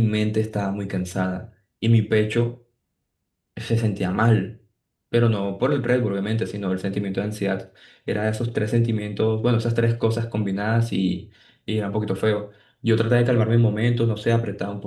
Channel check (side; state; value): both; identical; correlation 1.00